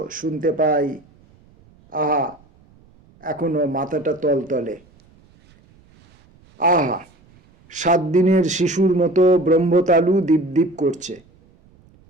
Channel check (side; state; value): right; noise; rumble, 30 dB below the sound